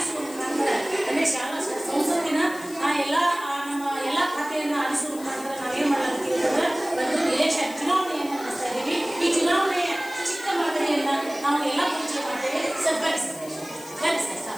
ಮುಖಾಂತರ ಅಂದರೆ ಶಾಲಾ ಸಂಸತ್ತಿನ ಎಲ್ಲ ನಮ್ಮ ಎಲ್ಲ ಖಾತೆಯನ್ನು ಆರಿಸುವ ಮುಖಾಂತರ ನಾವೇನು ಮಾಡಲಾಗ್ತೀವಿ ಅಂತಂದ್ರೆ ಒಂದು ಎಲೆಕ್ಷನ್ ಚುನಾವಣೆಯನ್ನು ನಡೆಸ್ತಾ ಇದ್ದೀವಿ. ಈ ಚುನಾವಣೆಯ ಚಿಕ್ಕ ಮಾದರಿಯನ್ನು ನಾವು ಎಲ್ಲ ಪರಿಚಯ ಮಾಡ್ತೇವೆ. ಸರ್ ಬರ್ರಿ ಸರ್, ಬರ್ರಿ ಸರ್,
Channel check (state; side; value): noise; left; hiss, 17 dB below the sound